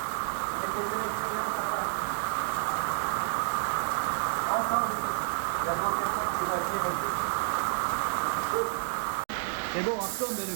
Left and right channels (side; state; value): left; silent; 58 dB below the other